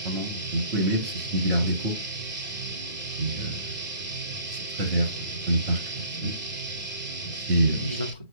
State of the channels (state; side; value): inverted; both; correlation -0.54